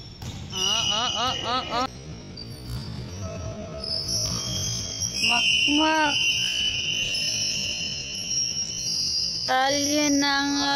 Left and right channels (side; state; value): both; identical; correlation 1.00